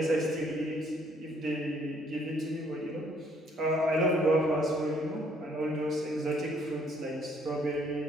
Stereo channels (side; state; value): both; normal; correlation 0.65